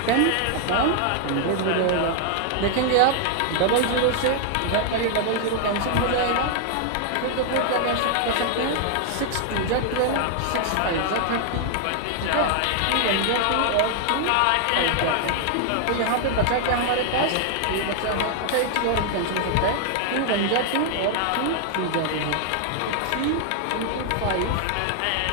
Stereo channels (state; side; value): different; both; correlation 0.00